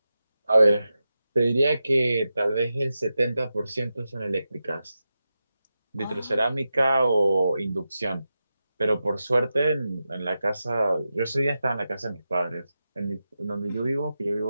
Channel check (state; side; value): inverted; both; correlation -0.91